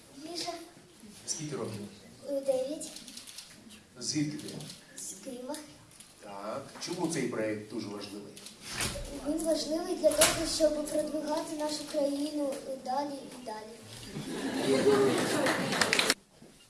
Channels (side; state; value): both; identical; correlation 1.00